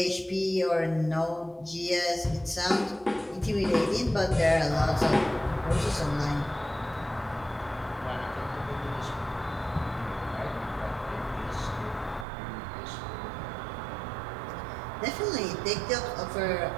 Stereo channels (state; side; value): drops out; left; at 12.2 s